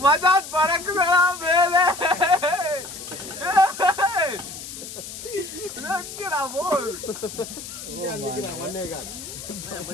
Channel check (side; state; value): left; noise; hiss, 11 dB below the sound